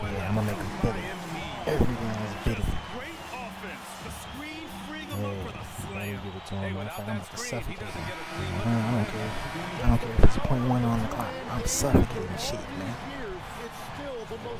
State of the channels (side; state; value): both; identical; correlation 1.00